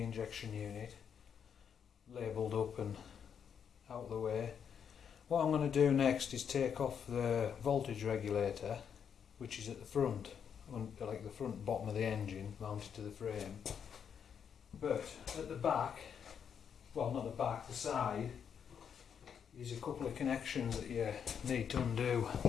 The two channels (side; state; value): right; quieter; 7.6 dB